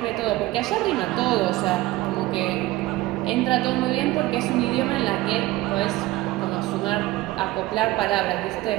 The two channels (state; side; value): quieter; left; 17.8 dB